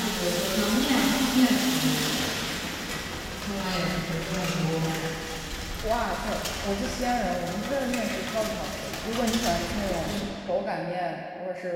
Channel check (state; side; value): identical; both; correlation 1.00